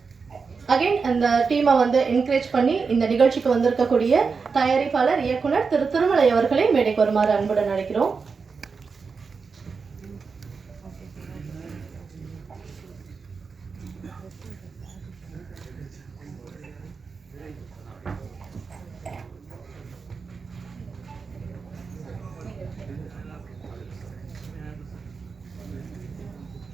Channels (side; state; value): left; quieter; 5.1 dB